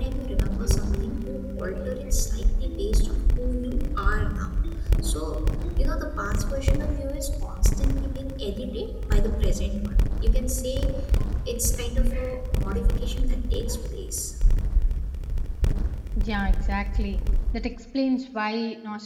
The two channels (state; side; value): identical; both; correlation 1.00